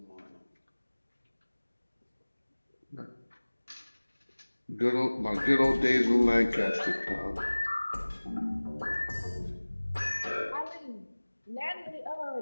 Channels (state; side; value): inverted; both; correlation -1.00